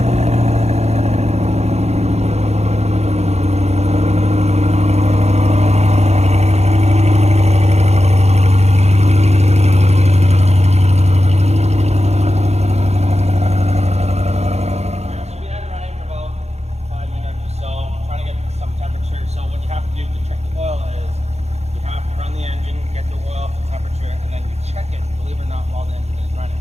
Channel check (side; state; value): left; late; 0.31 ms